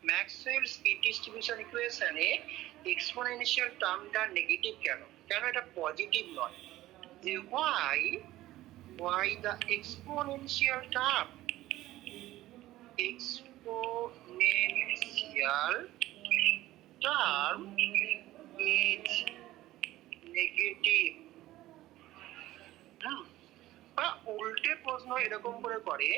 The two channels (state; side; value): quieter; left; 15.8 dB